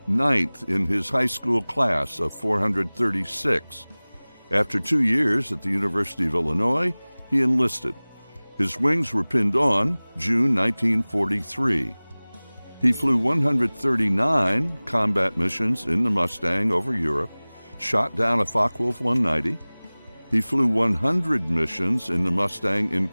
9th in his high school class of 436. After 2 years at the University of Illinois, he enlisted. His wings were pinned on June 1943. He flew 139 combat missions in the Mustang over Europe, shot down a Focke-Wulf 190. He flew 100 missions in the Mustang in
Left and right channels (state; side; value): inverted; both; correlation -1.00